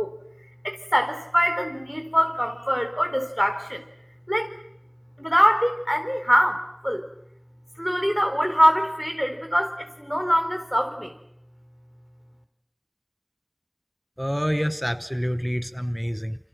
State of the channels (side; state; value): both; identical; correlation 1.00